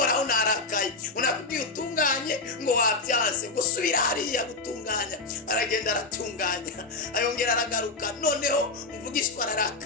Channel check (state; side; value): quieter; right; 3.6 dB